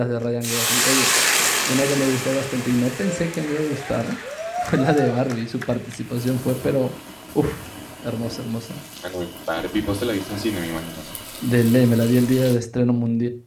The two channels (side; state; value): both; identical; correlation 1.00